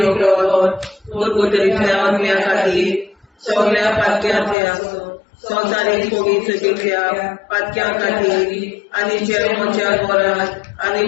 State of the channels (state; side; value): drops out; right; at 4.5 s